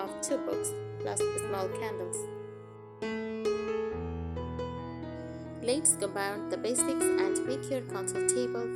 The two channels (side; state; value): both; identical; correlation 1.00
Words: 2 books plus small candles. Let's go beyond the basics and make your console table